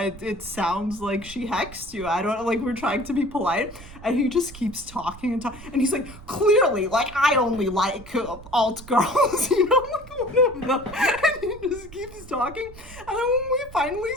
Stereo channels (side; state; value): right; noise; rumble, 17 dB below the sound